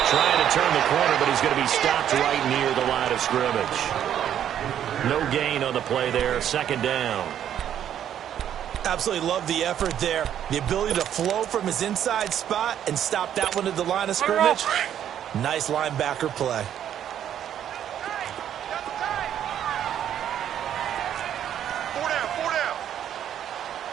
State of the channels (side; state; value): left; quieter; 10.1 dB